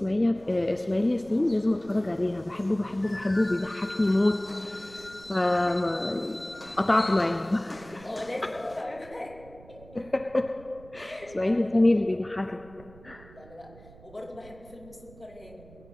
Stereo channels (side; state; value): right; noise; rumble, 22 dB below the sound